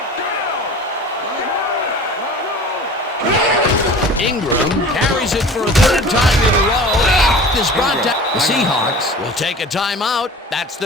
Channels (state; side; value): normal; both; correlation 0.41